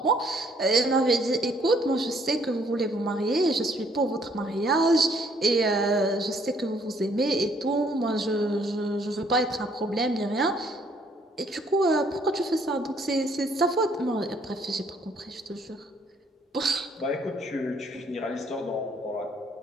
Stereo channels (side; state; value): both; normal; correlation 0.65